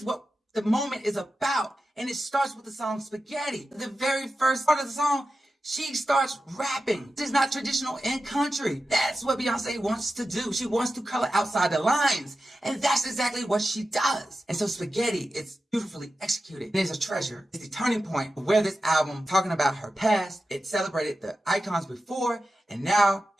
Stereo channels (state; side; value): normal; both; correlation 0.92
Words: what the moment is about. And it starts with the song Spaghetti. The very first part of the song, she starts rapping. This is not traditional in country. That's what Beyonce wants to do. She wants to color outside the lines. And that's exactly what she does. And so Spaghetti, it's beautifully executed. It is a treasure. It's the turning point of where this album, talking about her past, it celebrated the icons before, and now